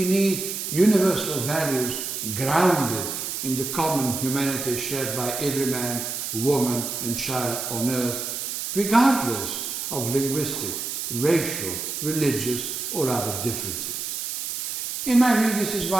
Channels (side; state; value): right; noise; hiss, 4 dB below the sound